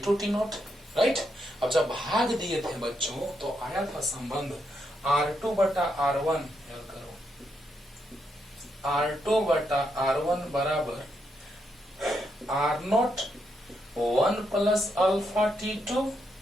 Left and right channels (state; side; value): normal; both; correlation 0.80